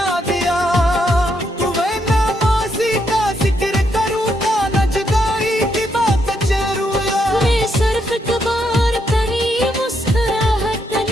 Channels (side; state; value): both; normal; correlation 0.77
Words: दिया तो वह नामाजी का जिक्र करूंगा, न जुदाई की बात जरूर। मैं सिर्फ कबार कहीं मुस्कुराहट